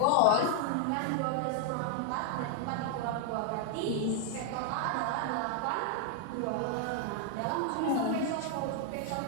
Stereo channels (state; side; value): different; both; correlation 0.00